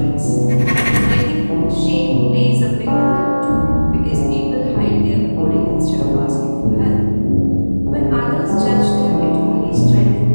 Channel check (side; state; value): both; inverted; correlation -1.00